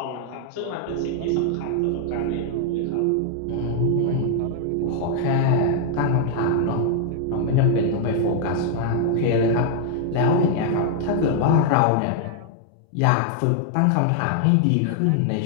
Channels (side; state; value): both; different; correlation 0.00